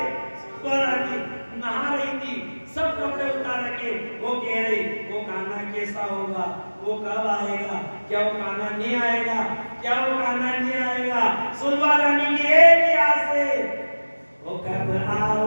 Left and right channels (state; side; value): inverted; both; correlation -1.00